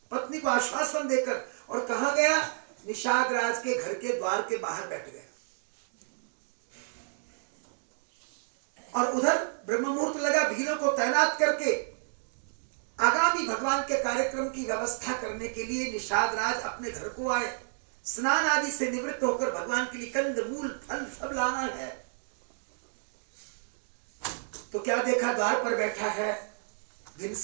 पत्नी को आश्वासन देकर, और कहा गया निषाद राज के घर के द्वार के बाहर बैठ गया, और उधर ब्रह्म मुहूर्त लगा, भीलों को तैनात करके आगामी भगवान के कार्यक्रम की व्यवस्था करने के लिए निषाद राज अपने घर को आए। स्नान आदि से निवृत्त होकर भगवान के लिए कंद मूल फल सब लाना है। तो क्या देखा, द्वार पर बैठा है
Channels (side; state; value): left; silent; digital silence